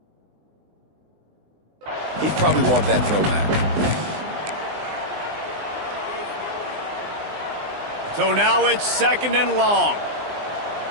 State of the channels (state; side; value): late; left; 20 ms